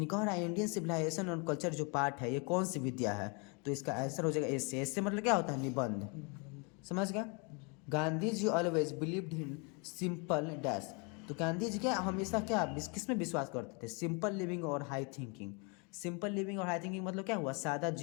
कह रहा है इंडियन सिविलाइजेशन और कल्चर जो पार्ट है ये कौन सी विद्या है? तो इसका आंसर हो जाएगा एस से। एस से मतलब क्या होता है? निबंध। समझ गया? Gandhi ji always believed in simple dash. तो गांधी जी क्या हमेशा क्या किस में विश्वास करते थे? सिंपल लिविंग और हाई थिंकिंग। सिंपल लिविंग और हाई थिंकिंग मतलब क्या हुआ? सादा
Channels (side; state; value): right; quieter; 32.8 dB